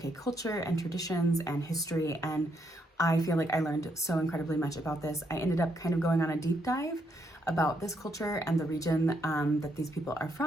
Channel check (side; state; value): both; normal; correlation 0.76